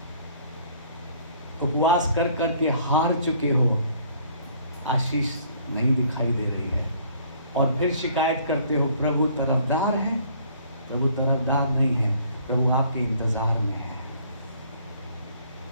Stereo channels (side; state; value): both; inverted; correlation -0.59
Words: उपवास कर करके हार चुके हो, आशीष नहीं दिखाई दे रही है। और फिर शिकायत करते हो, प्रभु तरफदार है। प्रभु तरफदार नहीं है, प्रभु आपके इंतजार में है।